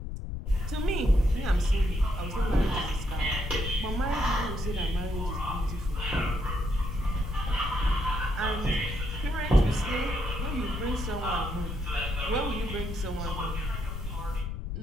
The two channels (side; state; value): left; noise; rumble, 5 dB below the sound